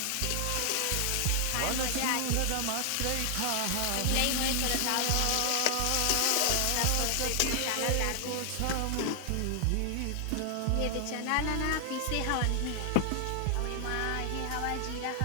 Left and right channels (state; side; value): different; both; correlation 0.00